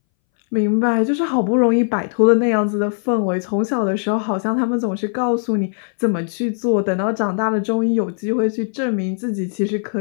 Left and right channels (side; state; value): right; silent; 62 dB below the other